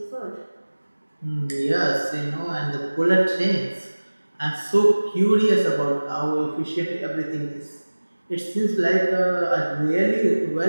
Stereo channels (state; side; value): inverted; both; correlation -1.00